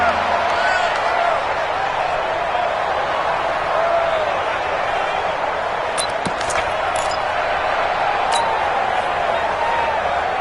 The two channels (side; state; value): both; identical; correlation 1.00